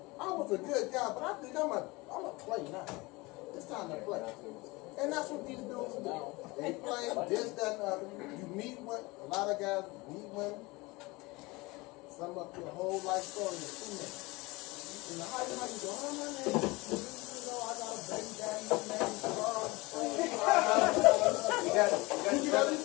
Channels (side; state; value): right; quieter; 23.5 dB